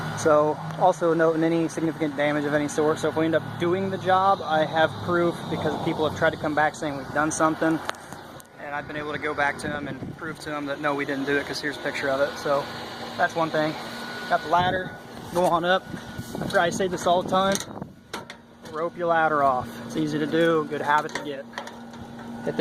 So also noting any significant damage of any sort, so if we end up doing the job, I have proof because people have tried to come back saying we've done something, and I've been able to go back to them and prove to them that no, we didn't do it, because here's a picture of it. So that's one thing. Got the ladder, go on up. I say this all the time, rope your ladder off. It's easy to do, good habit to get. At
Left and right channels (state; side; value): identical; both; correlation 1.00